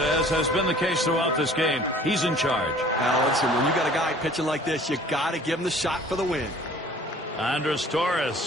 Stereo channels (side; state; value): both; normal; correlation 0.51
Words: has been the case throughout this game, he's in charge. Now, listen, when you got a guy pitching like this, you got to give him the shot for the win. Andres